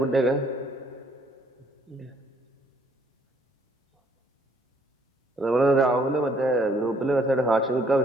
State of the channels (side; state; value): both; normal; correlation 0.65